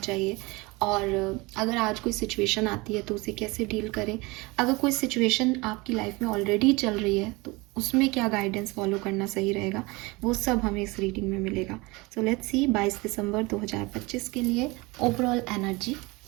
और अगर आज कोई सिचुएशन आती है तो उसे कैसे डील करें, अगर कोई सिचुएशन आपकी लाइफ में ऑलरेडी चल रही है तो उसमें क्या गाइडेंस फॉलो करना सही रहेगा, वो सब हमें इस रीडिंग में मिलेगा। सो लेट्स सी 22 दिसंबर 2025 के लिए ओवरऑल एनर्जी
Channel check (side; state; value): left; quieter; 24.2 dB